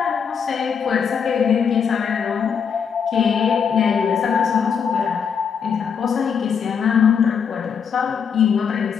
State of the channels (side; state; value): right; quieter; 6.8 dB